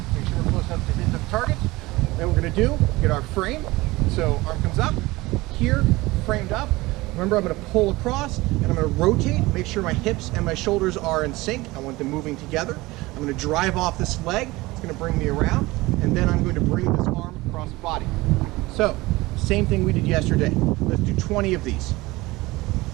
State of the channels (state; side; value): quieter; left; 20.6 dB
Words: Make sure we're close enough to hit the target. Then we're going to get our frame. So arm comes up, here, framed up. Remember, I'm going to pull across and I'm going to rotate, make sure my hips and my shoulders are in sync. I want them moving together. I'm going to drive off this leg. It's going to bring me around. And then I'm going to bring this arm across the body. So, same thing we did yesterday. Let's do 20 of these.